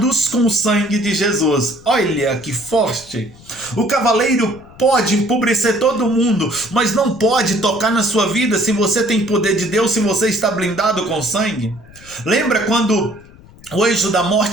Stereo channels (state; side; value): noise; left; rumble, 23 dB below the sound